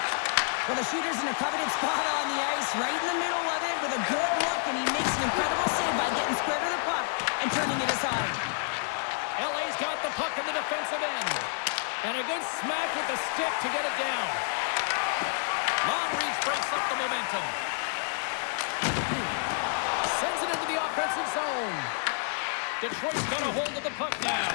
Well, the shooter's in a coveted spot on the ice, right in the middle of it with a good look, and he makes an incredible save by getting square to the puck and turning it aside. LA's got the puck in the defensive end. And a good smack with the stick to get it down. Long reach breaks up the momentum. Sends it into the offensive zone. Detroit's got a hold of the puck now.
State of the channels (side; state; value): right; silent; 59 dB below the other